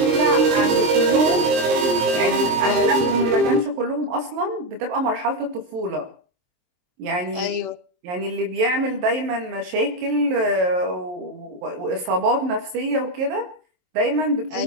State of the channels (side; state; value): left; late; 23 ms